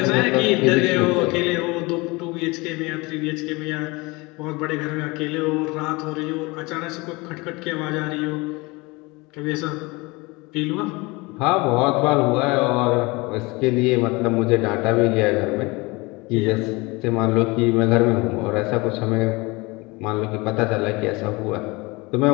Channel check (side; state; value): right; quieter; 24.7 dB